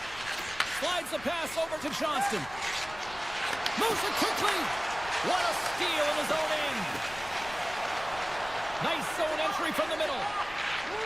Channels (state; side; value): noise; left; rumble, 18 dB below the sound